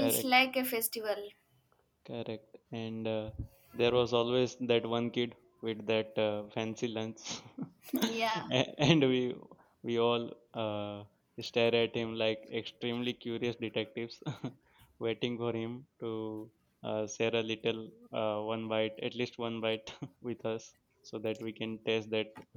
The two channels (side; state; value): both; identical; correlation 1.00